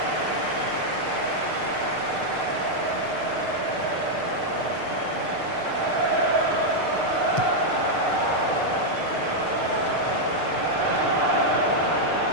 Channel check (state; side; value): late; right; 6.7 ms